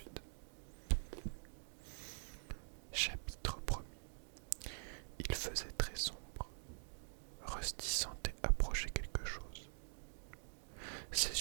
Chapitre 1er. Il faisait très sombre. Rusty sentait approcher quelque chose.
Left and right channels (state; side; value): silent; left; digital silence